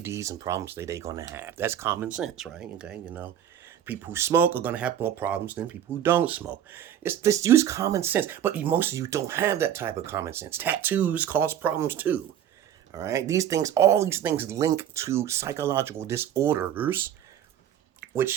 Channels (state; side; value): quieter; left; 10.2 dB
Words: and problems they're going to have. That's common sense, right? Okay, people who smoke are going to have more problems than people who don't smoke. Just use common sense. But most of you don't have that type of common sense. Tattoos cause problems too. All right? All these things link to psychological disorders,